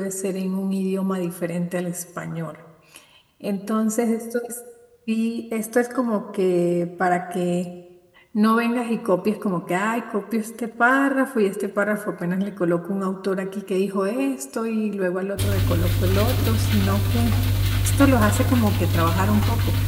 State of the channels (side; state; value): both; identical; correlation 1.00